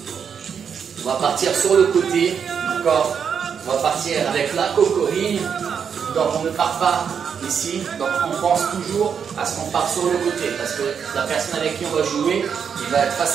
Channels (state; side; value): quieter; left; 7.1 dB